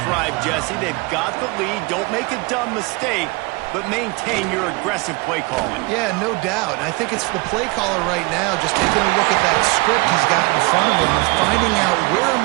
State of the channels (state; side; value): quieter; left; 26.6 dB